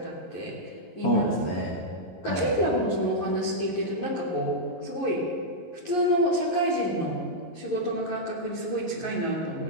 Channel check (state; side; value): late; right; 11 ms